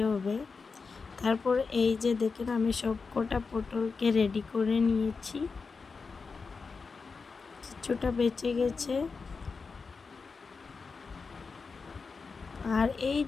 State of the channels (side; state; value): right; quieter; 4.7 dB